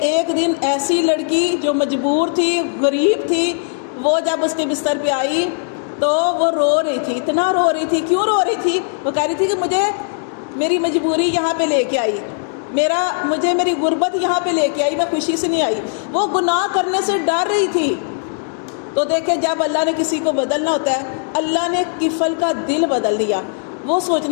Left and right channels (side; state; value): right; silent; digital silence